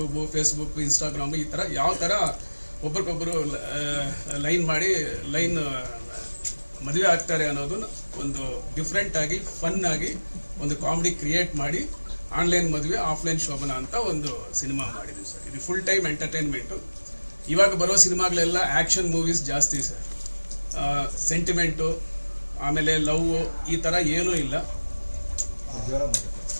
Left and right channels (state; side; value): inverted; both; correlation -1.00